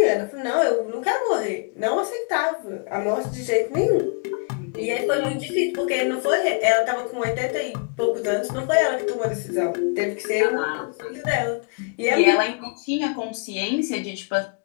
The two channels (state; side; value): quieter; right; 35.3 dB